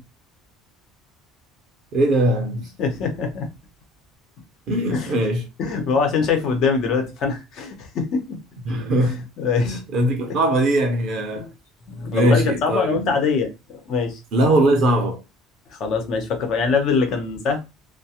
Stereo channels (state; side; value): normal; both; correlation 0.52